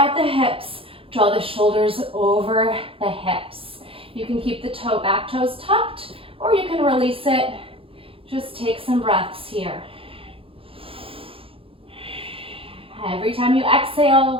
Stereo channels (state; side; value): late; left; 0.27 ms